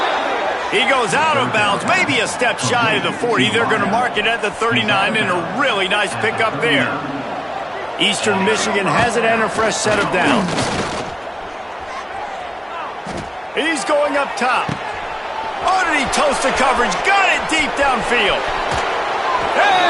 He goes out of bounds, maybe a step shy of the 40. They're going to mark it at the 39, and a really nice pickup there. Eastern Michigan has it and a fresh set of downs. He's going up top. Oh, did he toast the coverage? Got it deep downfield.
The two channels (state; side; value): identical; both; correlation 1.00